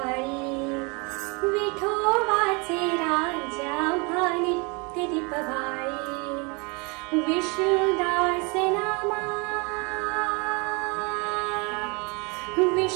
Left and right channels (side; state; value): left; quieter; 30.3 dB